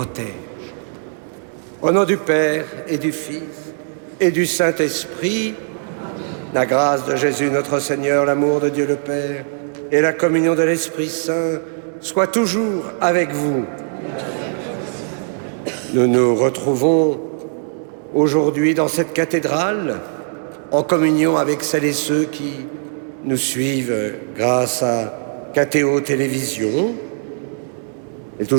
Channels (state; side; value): silent; left; 62 dB below the other